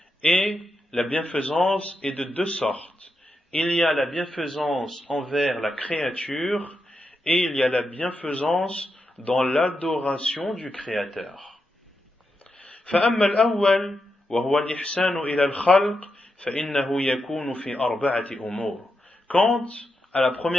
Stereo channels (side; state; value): both; normal; correlation 0.86